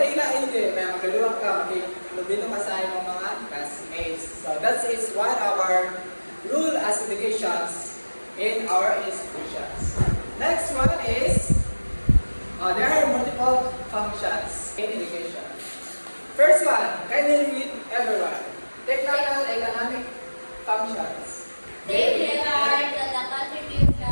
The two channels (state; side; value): inverted; both; correlation -1.00